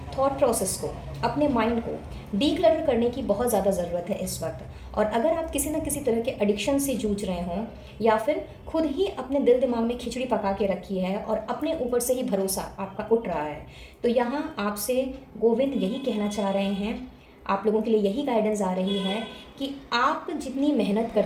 थॉट प्रोसेस को, अपने माइंड को डीक्लटर करने की बहुत ज़्यादा ज़रूरत है इस वक्त। और अगर आप किसी न किसी तरह के एडिक्शन से जूझ रहे हों या फिर खुद ही अपने दिल दिमाग में खिचड़ी पका के रखी है और अपने ऊपर से ही भरोसा आपका उठ रहा है तो यहाँ आपसे गोविंद यही कहना चाह रहे हैं, आप लोगों के लिए यही गाइडेंस आ रही है कि आप जितनी मेहनत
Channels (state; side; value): identical; both; correlation 1.00